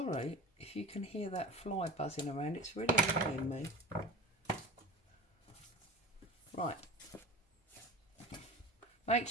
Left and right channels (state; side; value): normal; both; correlation 0.31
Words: if you can hear that fly buzzing around, it's really annoying me. Right. Make